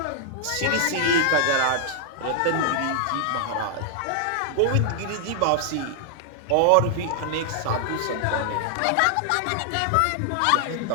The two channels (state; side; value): different; both; correlation 0.00